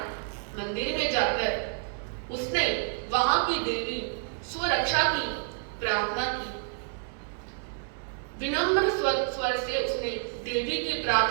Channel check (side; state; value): left; silent; 59 dB below the other